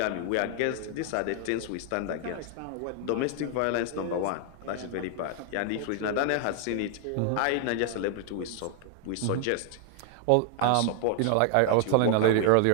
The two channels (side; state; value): both; different; correlation 0.00